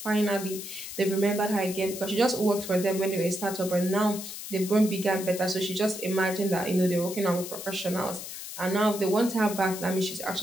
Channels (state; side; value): noise; left; hiss, 9 dB below the sound